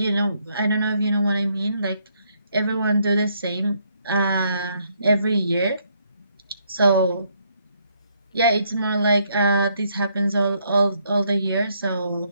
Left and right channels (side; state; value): both; inverted; correlation -0.72